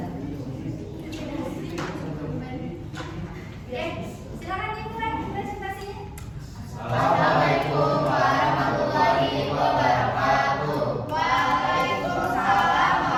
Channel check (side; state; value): both; identical; correlation 1.00